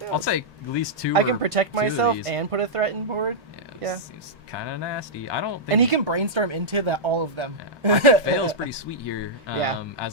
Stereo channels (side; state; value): both; normal; correlation -0.10